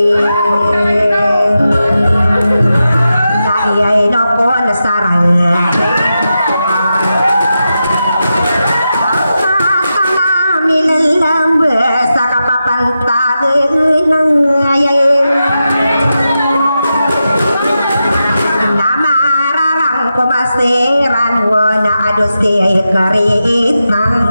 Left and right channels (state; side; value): inverted; both; correlation -0.90